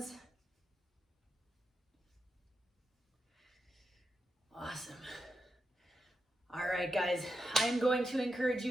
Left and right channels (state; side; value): normal; both; correlation 0.87